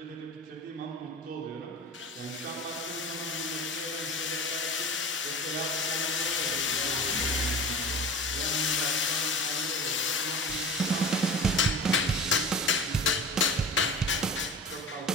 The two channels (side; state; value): both; normal; correlation 0.35